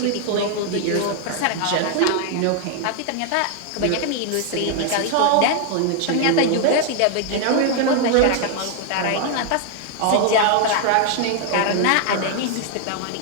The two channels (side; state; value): both; different; correlation 0.00